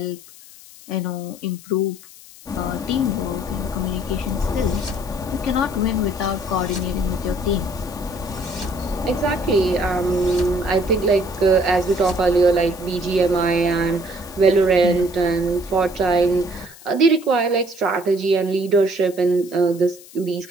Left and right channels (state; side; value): noise; left; hiss, 20 dB below the sound